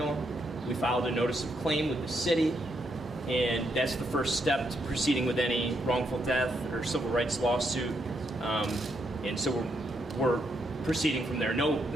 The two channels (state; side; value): normal; both; correlation 0.78